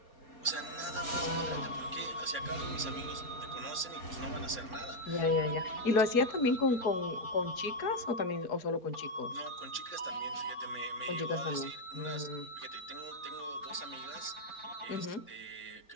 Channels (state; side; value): late; right; 4.2 ms